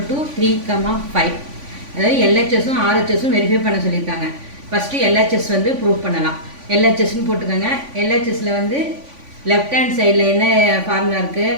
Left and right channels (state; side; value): late; left; 3.5 ms